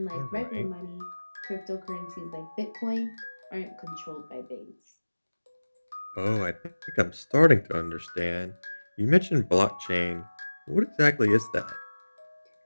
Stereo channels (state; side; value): inverted; both; correlation -1.00